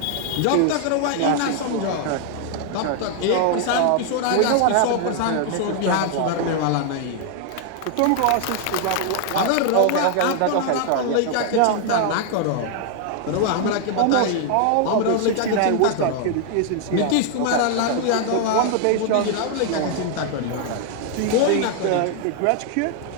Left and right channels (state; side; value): different; both; correlation 0.00